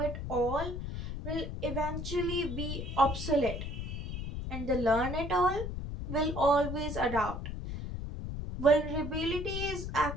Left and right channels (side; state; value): left; noise; rumble, 5 dB below the sound